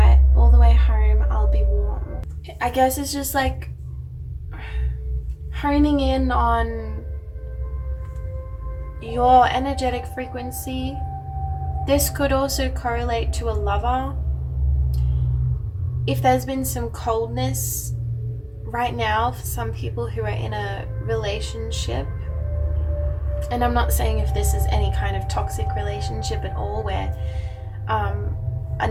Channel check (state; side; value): identical; both; correlation 1.00